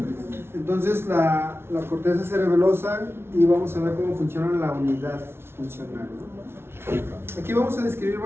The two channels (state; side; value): late; left; 0.12 ms